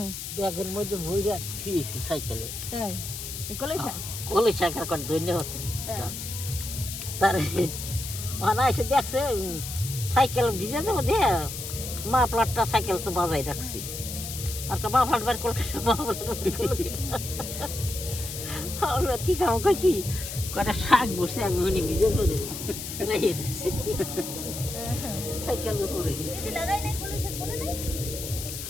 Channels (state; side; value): noise; left; hiss, 7 dB below the sound